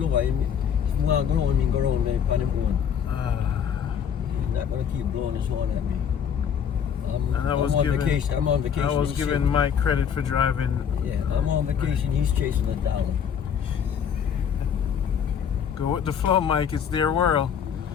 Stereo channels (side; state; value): right; quieter; 7.9 dB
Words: over. He's going to go around me on him own. Not gonna keep blowing his horn at me. I'm on vacation. I'm on vacation. I was giving Mike credit for driving. Yeah, I'm on vacation. He's chasing a dollar. Go with the flow, Mike. It's their world.